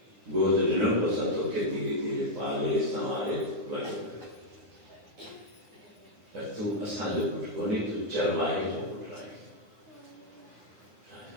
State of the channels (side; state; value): left; late; 9.8 ms